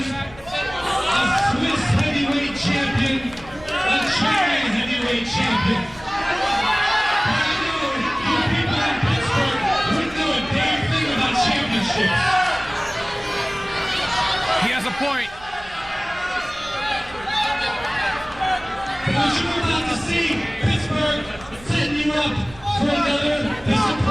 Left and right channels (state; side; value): noise; right; rumble, 21 dB below the sound